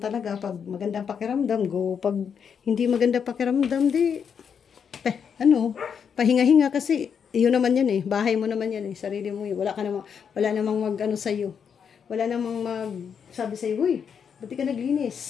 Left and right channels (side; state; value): right; quieter; 7.1 dB